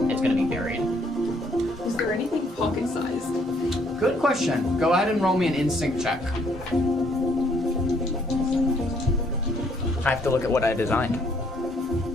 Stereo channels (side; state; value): both; normal; correlation 0.67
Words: going to be buried. Is there anything pocket-sized? Good question. Go ahead and roll me an instinct check. I have to look at what I designed.